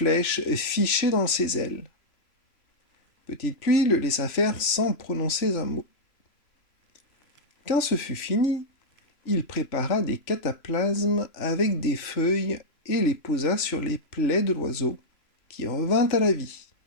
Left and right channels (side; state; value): right; late; 3.0 ms